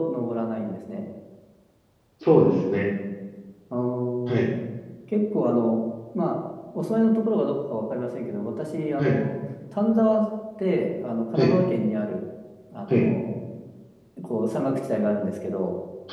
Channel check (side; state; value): both; identical; correlation 1.00